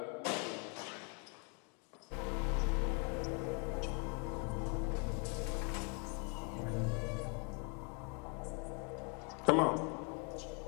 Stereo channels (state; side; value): quieter; right; 36.4 dB